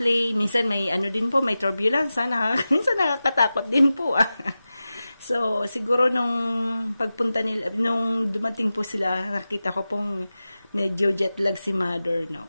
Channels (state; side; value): inverted; both; correlation -0.94